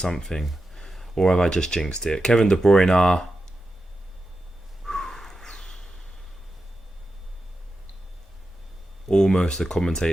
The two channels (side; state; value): both; normal; correlation 0.90